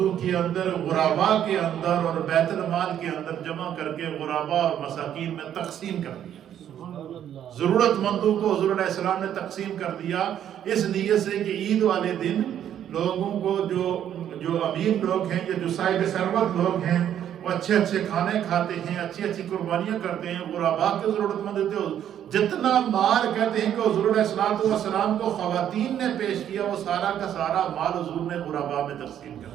کے اندر، غرباء کے اندر اور بیت المال کے اندر جمع کر کے غرباء اور مساکین میں تقسیم کر دیا۔ ضرورت مندوں کو حضور علیہ السلام نے تقسیم کر دیا، اس نیت سے کہ عید والے دن لوگوں کو جو امیر لوگ ہیں یا جو صاحب ثروت لوگ ہیں وہ اچھے اچھے کھانے کھاتے ہیں، اچھی اچھی قربانیاں کرتے ہیں، غرباء کے ضرورت مند ہوتے ہیں۔ جتنا مال کہتے ہیں کہ حضور علیہ السلام کو خواتین نے پیش کیا، وہ سارا کا سارا مال حضور نے غرباء میں تقسیم کر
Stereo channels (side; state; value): left; quieter; 10.2 dB